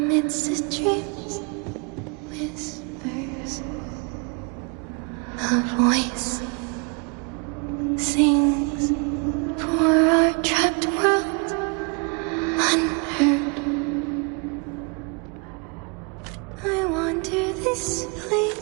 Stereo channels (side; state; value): left; quieter; 35.4 dB